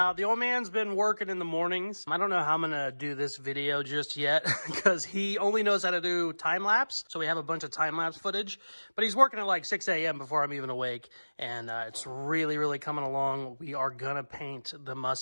The old man's been working in the mornings. I don't know how I'm gonna do this video just yet because he only knows how to do time lapse. So we have a bunch of time lapse footage, but he's working at like 6 a.m. before I'm even awake. And it's really, really coming along. We are gonna paint the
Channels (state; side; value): inverted; both; correlation -1.00